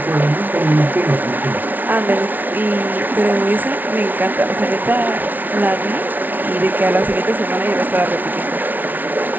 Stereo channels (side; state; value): left; late; 0.083 ms